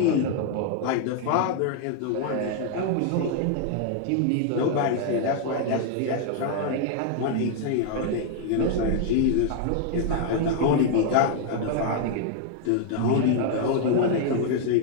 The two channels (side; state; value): both; different; correlation 0.00